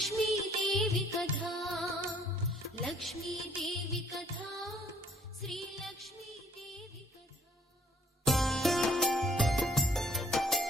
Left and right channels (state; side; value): normal; both; correlation 0.61